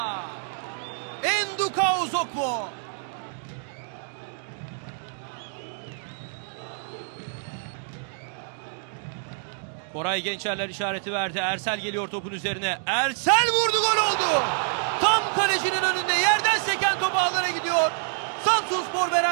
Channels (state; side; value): silent; left; 60 dB below the other